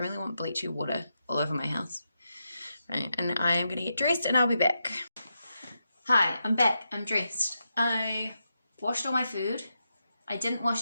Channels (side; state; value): both; inverted; correlation -0.86